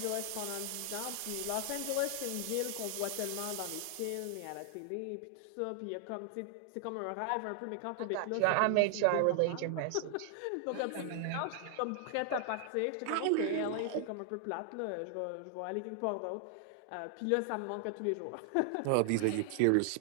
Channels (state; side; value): different; both; correlation 0.00